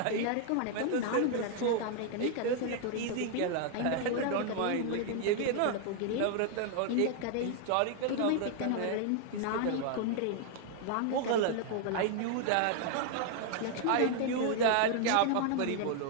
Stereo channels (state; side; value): different; both; correlation 0.00